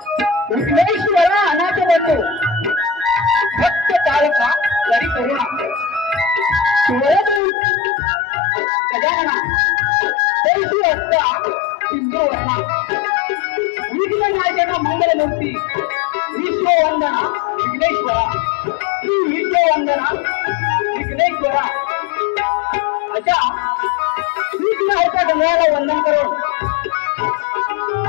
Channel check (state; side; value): drops out; right; at 7.4 s